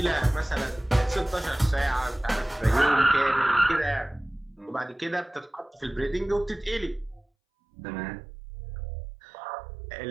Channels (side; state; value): left; drops out; at 7.2 s